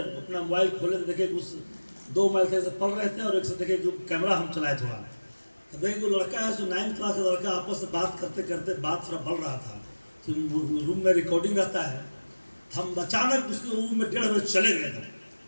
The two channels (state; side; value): inverted; both; correlation -1.00